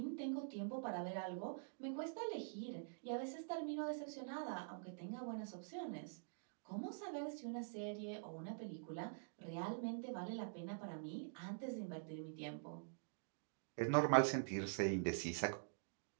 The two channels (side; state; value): left; silent; digital silence